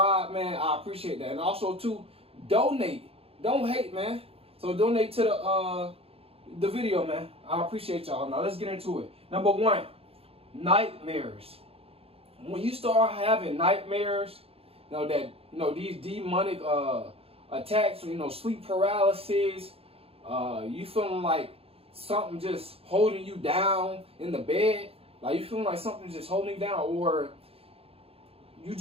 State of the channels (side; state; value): left; late; 0.28 ms